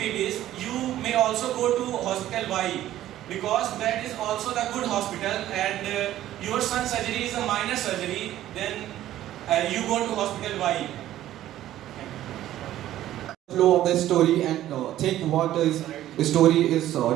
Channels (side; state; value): left; quieter; 13.3 dB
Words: is, you may also go to Hospital Y, because that is also the good hospital, and your son's surgery is a minor surgery, then you go to Hospital Y. Flow of the story and think what is the story is